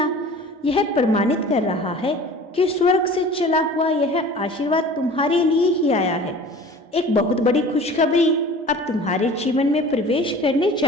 यह प्रमाणित कर रहा है कि स्वर्ग से चला हुआ यह आशीर्वाद तुम्हारे लिए ही आया है। एक बहुत बड़ी खुशखबरी अब तुम्हारे जीवन में प्रवेश करने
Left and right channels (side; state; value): both; normal; correlation 0.43